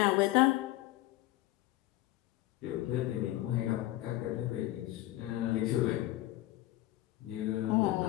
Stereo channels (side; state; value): right; quieter; 16.3 dB